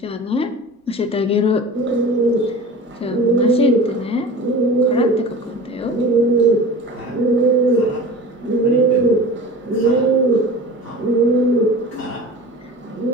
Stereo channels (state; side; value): normal; both; correlation 0.37